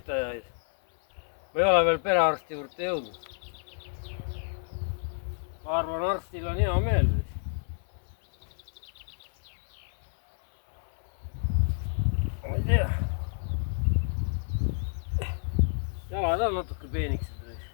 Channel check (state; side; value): silent; right; 58 dB below the other